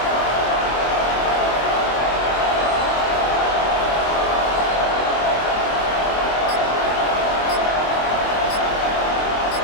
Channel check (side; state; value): right; late; 24 ms